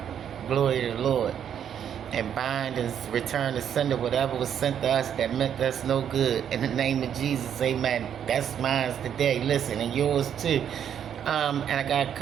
glory of the Lord, and bind and return to sender whatever was sent to us that meant us no good. In the name of Jesus, amen. That's mine today. Listen, and yours too. And I got a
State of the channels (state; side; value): quieter; left; 9.0 dB